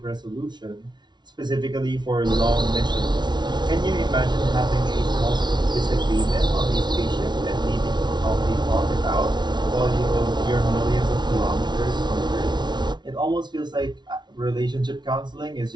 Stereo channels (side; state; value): left; late; 0.21 ms